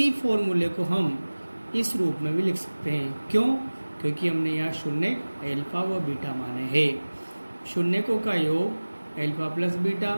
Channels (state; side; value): inverted; both; correlation -1.00